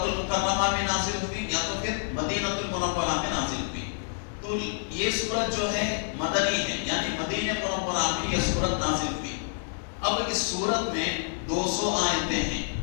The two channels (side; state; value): right; silent; digital silence